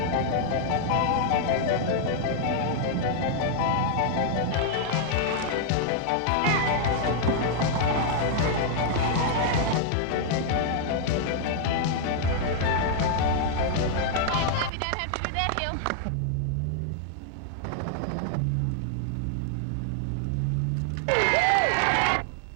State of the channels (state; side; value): drops out; left; at 14.7 s